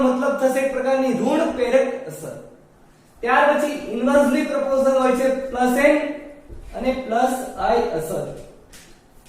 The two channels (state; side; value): identical; both; correlation 1.00